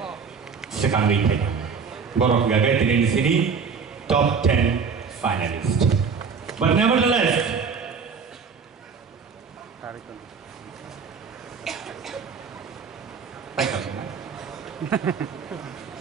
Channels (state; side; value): quieter; left; 5.7 dB